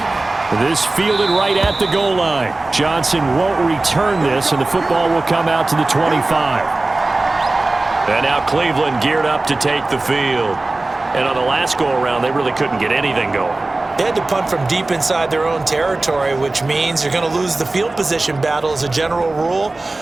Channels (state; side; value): quieter; left; 3.0 dB